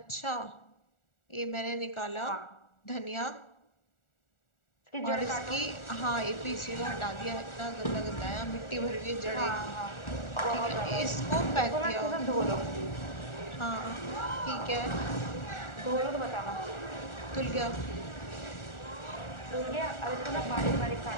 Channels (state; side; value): late; right; 1.4 ms